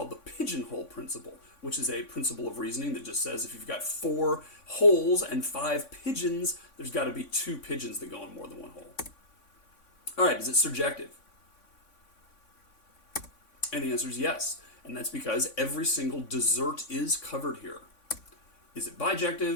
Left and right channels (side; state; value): right; late; 3.5 ms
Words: the pigeonhole principle, which is a principle of reasoning that just says if you've got 4 holes and 5 pigeons, there's got to be 2 pigeons that go in more than one hole. All right, is it surjective? And the answer is yes, and that's because every single dessert is covered here. Is it